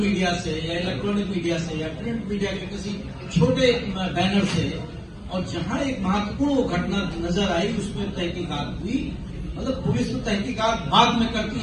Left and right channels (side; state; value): both; identical; correlation 1.00